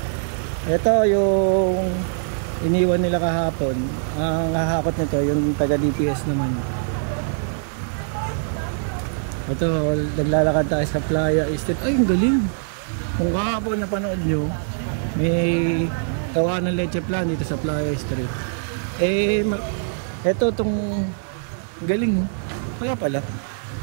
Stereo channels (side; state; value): left; silent; 64 dB below the other